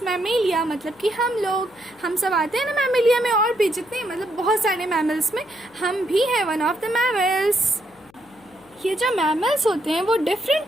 मैमेलिया, मतलब कि हम सब आते हैं ना मैमेलिया में, और भी जितने, मतलब बहुत सारे मैमल्स में हम भी हैं वन ऑफ द मैमल्स। ये जो मैमल्स होते हैं वो डिफरेंट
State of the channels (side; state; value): left; noise; hum, 30 dB below the sound